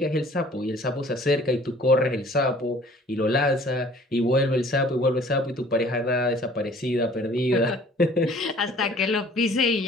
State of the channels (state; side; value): normal; both; correlation 0.52